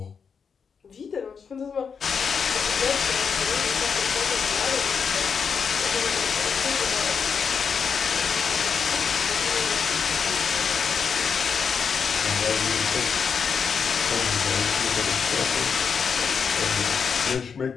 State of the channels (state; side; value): quieter; right; 6.2 dB